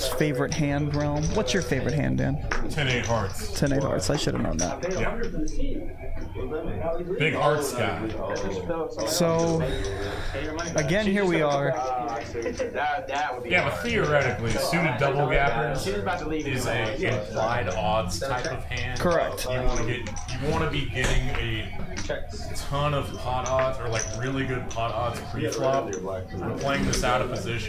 favorite hand realm. What's your favorite hand, Dan? 10-8 hearts. 10-8 hearts. I should have known that. Yeah. Big hearts guy. So, again, here we are. Yeah, but theoretically, suited double gappers is a implied odds type of hand. Correct. You want to be getting a ton of pot odds or like really good pot odds pre-flop. We're playing this out of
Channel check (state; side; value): identical; both; correlation 1.00